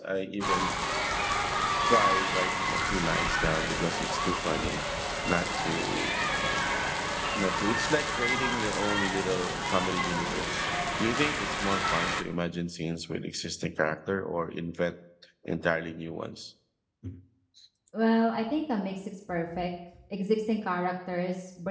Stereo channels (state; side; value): identical; both; correlation 1.00